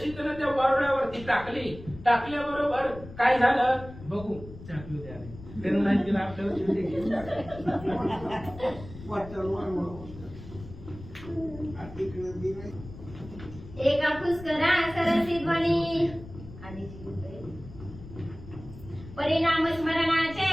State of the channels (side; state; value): left; noise; rumble, 15 dB below the sound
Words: त्यानं त्या वारुळावरती टाकली. टाकल्याबरोबर काय झालं बघू. त्यांना नाही दिला आपल्याला चिमटे घेऊन एका पुष्करा सरसी ध्वनी परिणाम